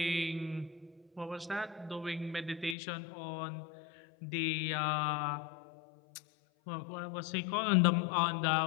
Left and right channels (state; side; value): drops out; right; at 2.8 s